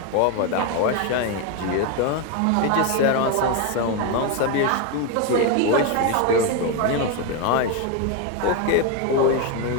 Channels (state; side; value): different; both; correlation 0.02